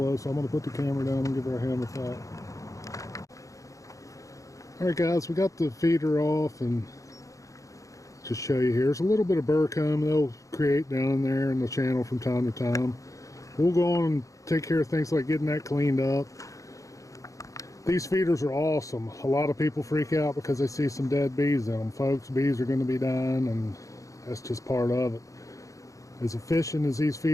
so I'm going to put the camera down and give her a hand with that. Alright guys, we got the feeder off, and just show you here. There's a little bit of burr comb they'll create down there in the channel from time to time. We'll go on and take care of things like getting that cleaned up. These feeders are awesome. A lot of people freak out because they see some dead bees in them. Folks, bees are going to be dying, and that's just part of it. As efficient as these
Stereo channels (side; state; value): right; late; 0.16 ms